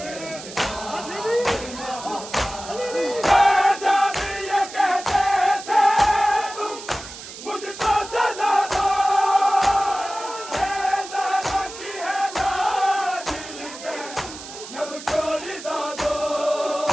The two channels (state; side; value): noise; right; hiss, 13 dB below the sound